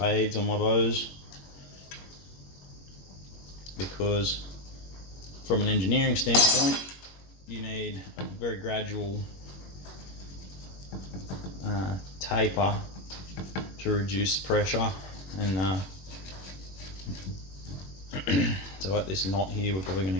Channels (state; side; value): late; right; 21 ms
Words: on my bows, because from an engineering standpoint, you need a very gradual taper to reduce pressure, and so at this knot here we're probably going